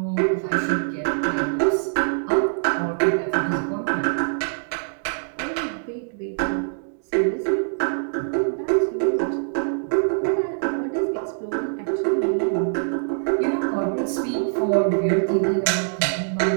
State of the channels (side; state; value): left; silent; digital silence